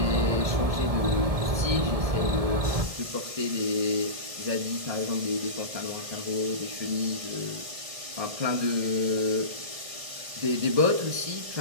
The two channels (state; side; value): late; left; 1.7 ms